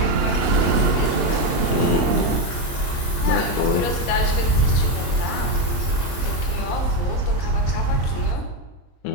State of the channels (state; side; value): late; right; 23 ms